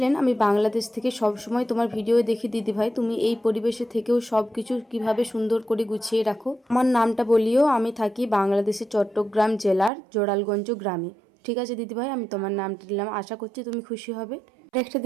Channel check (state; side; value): drops out; left; at 9.9 s